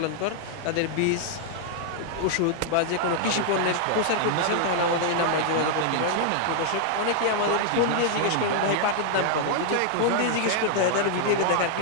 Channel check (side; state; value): both; different; correlation 0.00